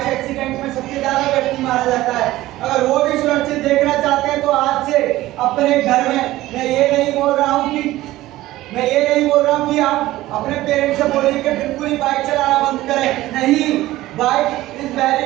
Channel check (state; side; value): quieter; left; 16.5 dB